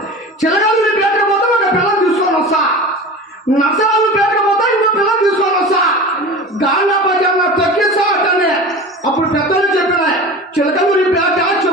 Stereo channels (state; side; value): normal; both; correlation 0.34